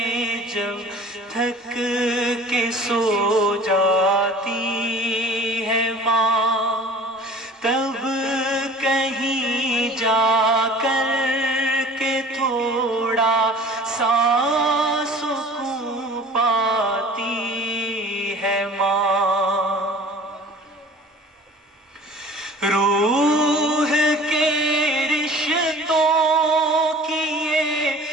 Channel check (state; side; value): normal; both; correlation 0.46